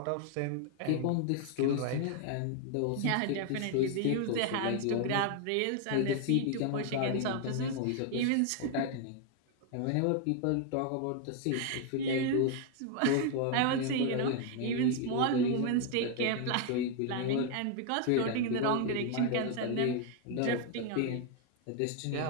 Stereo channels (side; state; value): both; different; correlation 0.00